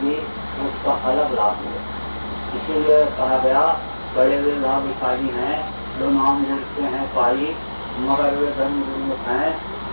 उसका अलग लाभ मिलेगा। इसीलिए कहा गया बड़े वे भाग्यशाली हैं जो नाम जुड़ते हैं पाई, मगर वे धर्म गुरुमुख हैं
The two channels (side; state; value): both; inverted; correlation -1.00